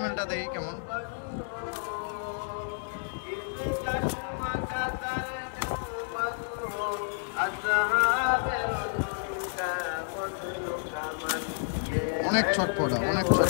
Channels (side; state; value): right; silent; 56 dB below the other